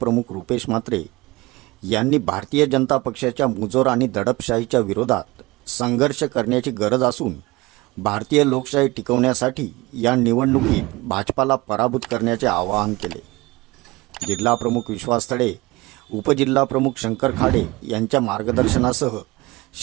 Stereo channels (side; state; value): left; quieter; 21.8 dB